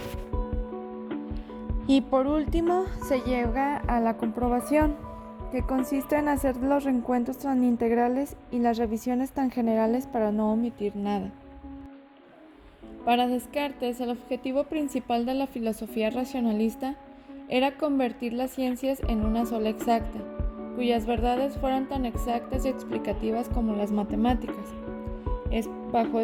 Y por último, se llega a la comprobación, que consiste en hacer los reencuentros tan integrales y las revisiones tan generales para no omitir nada. Para Descartes, el objetivo principal de la filosofía racionalista era convertir las ciencias en una sola exacta, cuyas verdades fueran tan exactas y explicativas como las matemáticas. Es bajo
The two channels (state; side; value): identical; both; correlation 1.00